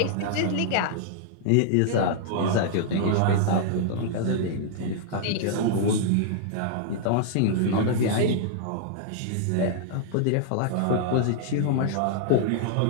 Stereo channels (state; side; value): different; both; correlation -0.01